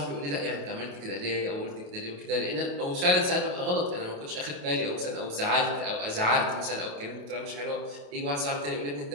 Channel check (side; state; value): left; late; 28 ms